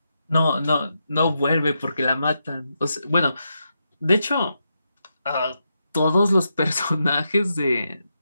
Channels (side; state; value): both; inverted; correlation -0.84